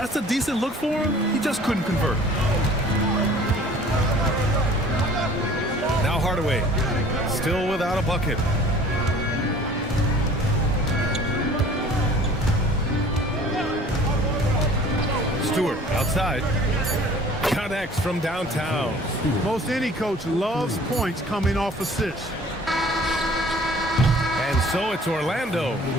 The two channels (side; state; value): both; normal; correlation 0.50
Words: a decent look for him. He just couldn't convert. Now Hardaway, still without a bucket. Stewart outside. Connects from downtown. Most any coach loves points coming off assists. And so it's Orlando,